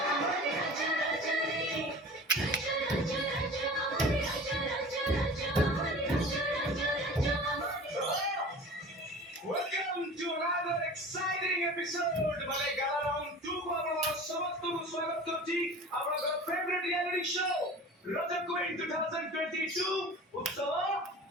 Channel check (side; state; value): both; normal; correlation 0.39